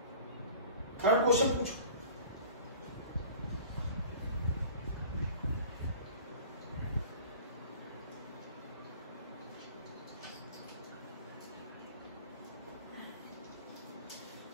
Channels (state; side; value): inverted; both; correlation -0.43